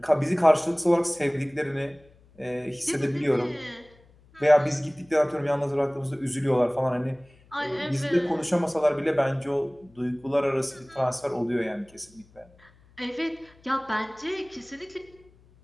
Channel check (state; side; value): noise; left; hum, 28 dB below the sound